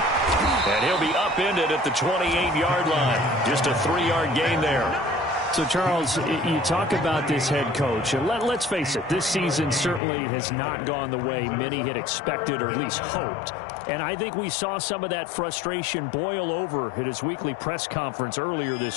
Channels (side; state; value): right; drops out; at 10.0 s